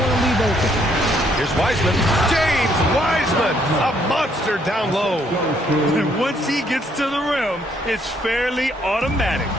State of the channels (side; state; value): both; normal; correlation 0.69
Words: to leave open. Here's Wiseman. James Wiseman, a monster down low. And once he gets to the rim, it's fairly automatic.